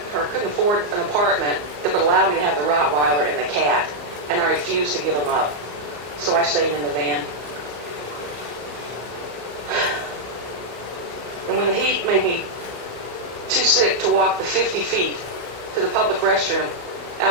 or couldn't afford an apartment that would allow me to have the Rottweiler and the cat, and I refused to give them up. So I stayed in the van. And when the heat made me too sick to walk the 50 feet to the public restroom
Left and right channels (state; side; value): late; left; 34 ms